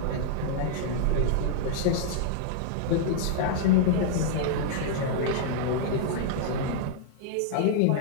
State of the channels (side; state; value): both; different; correlation -0.01